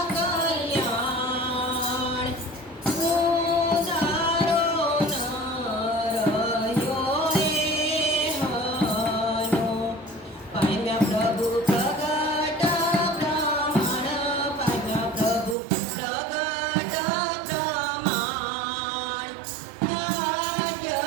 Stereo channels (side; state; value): left; drops out; at 15.6 s